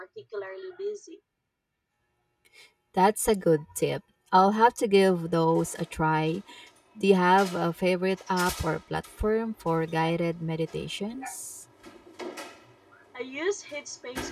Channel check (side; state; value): both; identical; correlation 1.00